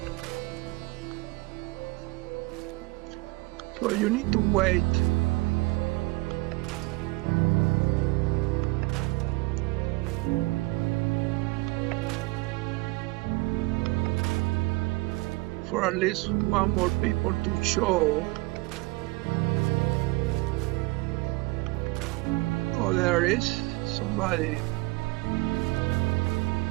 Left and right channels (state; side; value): quieter; left; 24.0 dB